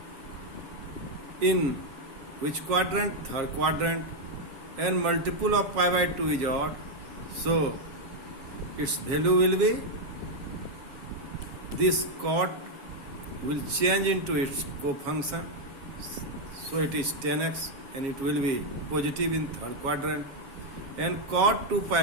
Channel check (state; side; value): late; left; 7.4 ms